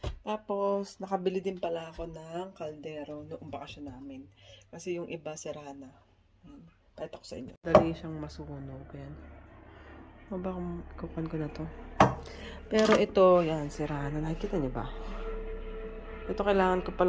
Tapos, nakabili din pala ako ng kaldero noong bakasyon namin. Kasi yung iba sira na. Ayan. Pakita ko sa inyo. Dali siyang masunog. Ayan. O ba kung kukuhan ko na to? Pero ito, yan, sira na. Nakikita niyo ba? Ito, kailangan ko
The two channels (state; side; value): identical; both; correlation 1.00